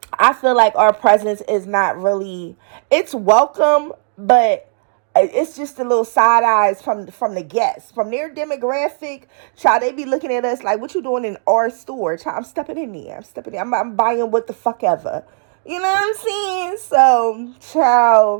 I feel like our presence is not really, it's welcome, but it's just a little side eyes from the guests, from their demographic. Child, they be looking at us like, what you doing in our store? Child, I'm stepping in there. I'm buying what the fuck ever. You know what I'm saying? So,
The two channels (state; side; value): silent; left; digital silence